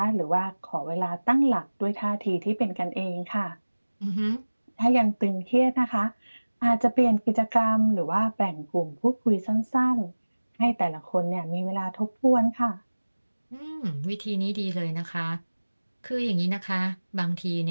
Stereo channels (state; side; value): inverted; both; correlation -1.00